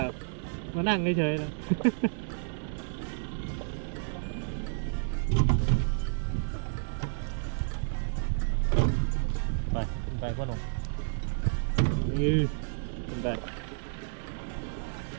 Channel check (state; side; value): silent; left; digital silence